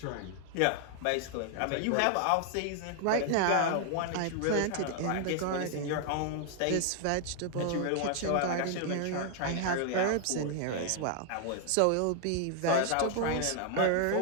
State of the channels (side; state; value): both; different; correlation 0.00